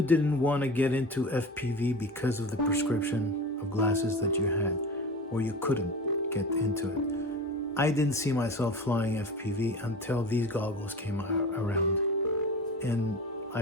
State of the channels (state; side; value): normal; both; correlation 0.32